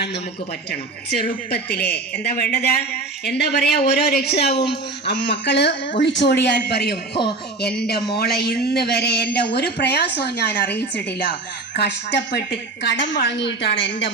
നമുക്ക് പറ്റണം. ചെറുപ്പത്തിലെ എന്താ വേണ്ടത്? എന്താ പറയാ, ഓരോ രക്ഷിതാവും മക്കള് ഒളിച്ചോടിയാൽ പറയും, എൻ്റെ മോളെ ഇന്ന് വരെ എൻ്റെ ഒരു പ്രയാസവും ഞാൻ അറിയിച്ചിട്ടില്ല, കഷ്ടപ്പെട്ട് കടം വാങ്ങിയിട്ടാണ് എൻ്റെ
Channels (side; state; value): left; quieter; 3.3 dB